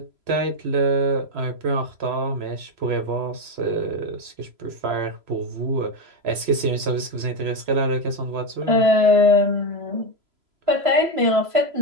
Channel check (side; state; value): left; late; 3.0 ms